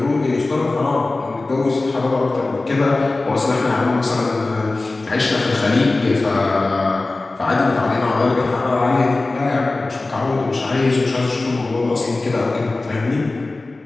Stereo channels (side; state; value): right; quieter; 3.2 dB